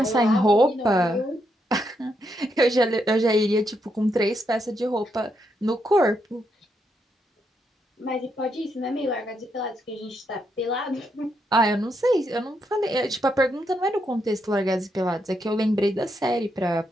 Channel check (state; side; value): normal; both; correlation 0.79